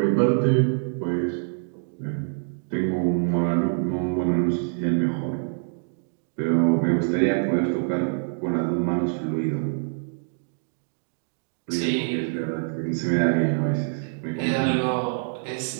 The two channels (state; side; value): silent; left; digital silence